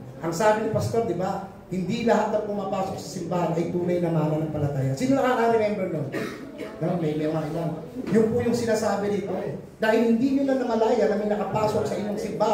Ang sabi ni Pastor, di ba? Hindi lahat na pumapasok sa simbahan ay tunay na mananampalataya. Sino nakaka-remember nun? No, may mga ilan. Yun po yung sinasabi dito. Dahil hindi nyo na namalaya na may nakapasok sa inyong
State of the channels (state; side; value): identical; both; correlation 1.00